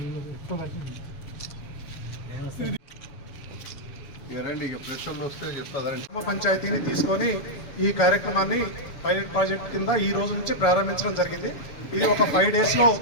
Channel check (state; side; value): late; right; 7.0 ms